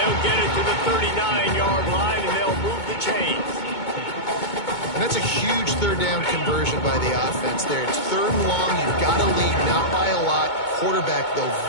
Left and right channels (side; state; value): right; late; 2.2 ms